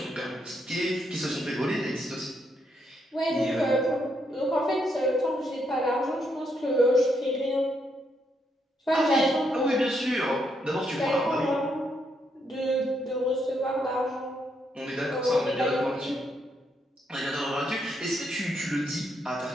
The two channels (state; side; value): normal; both; correlation 0.77